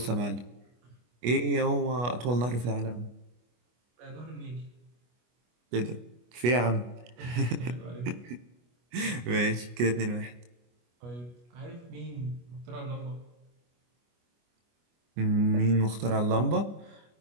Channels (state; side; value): late; left; 25 ms